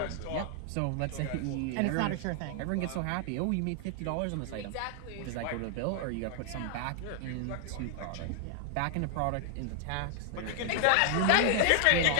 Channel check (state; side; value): different; both; correlation 0.00